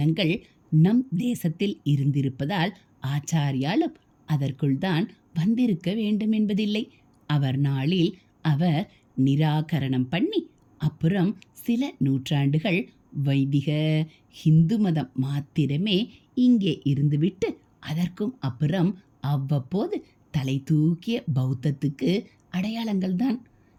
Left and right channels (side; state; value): both; identical; correlation 1.00